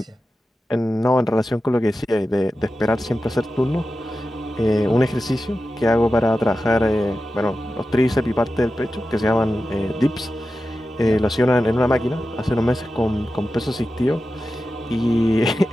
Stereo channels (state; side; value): normal; both; correlation 0.92